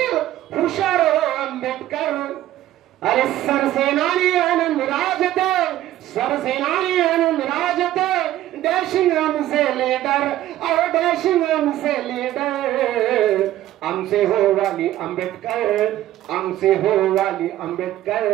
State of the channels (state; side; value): quieter; left; 13.9 dB